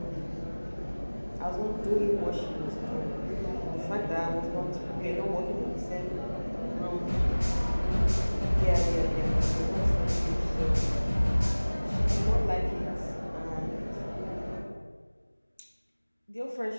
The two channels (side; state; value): both; inverted; correlation -1.00